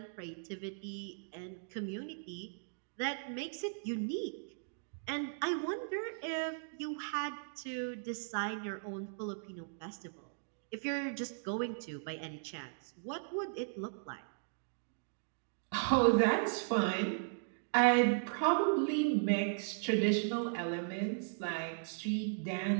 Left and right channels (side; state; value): left; silent; digital silence